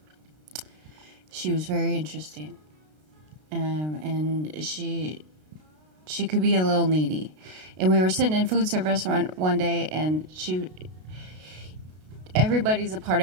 She was very interesting, and she could be a little needy. And we were sitting in food service one day, and everybody's a part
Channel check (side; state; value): left; late; 33 ms